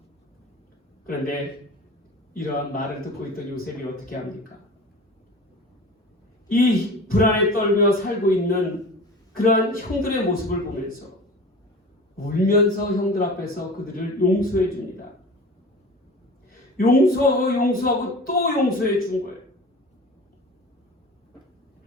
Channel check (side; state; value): both; normal; correlation 0.37